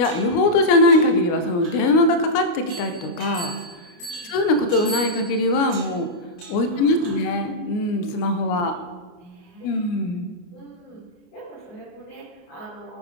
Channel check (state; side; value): late; right; 29 ms